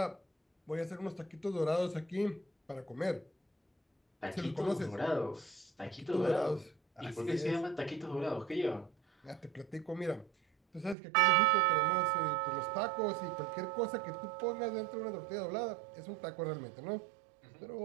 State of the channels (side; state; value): left; drops out; at 11.0 s